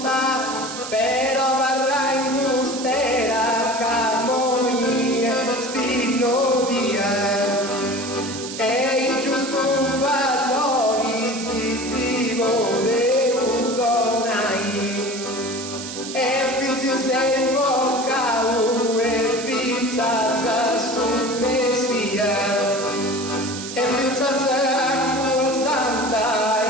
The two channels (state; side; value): noise; right; hiss, 9 dB below the sound